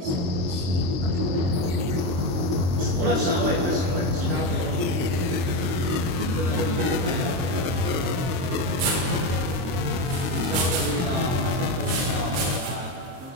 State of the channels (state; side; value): late; left; 22 ms